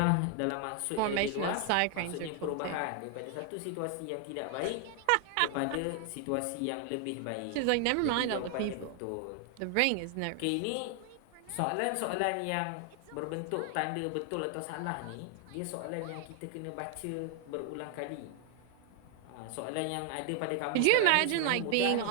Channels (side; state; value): both; different; correlation 0.00